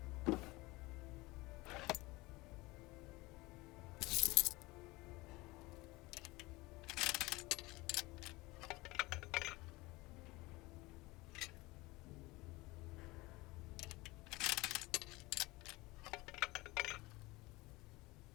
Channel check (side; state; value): right; quieter; 21.9 dB